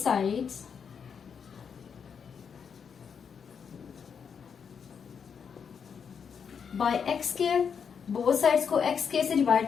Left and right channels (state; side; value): quieter; right; 6.7 dB